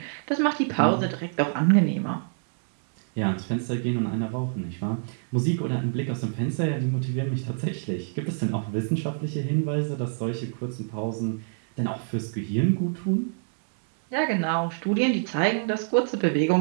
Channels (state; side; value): silent; left; digital silence